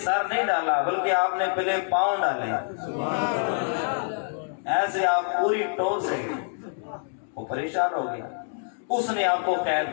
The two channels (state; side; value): silent; right; digital silence